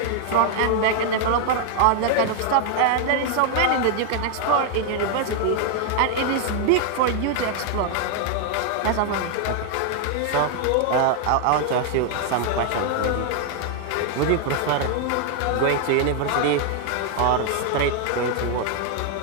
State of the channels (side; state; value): both; different; correlation 0.00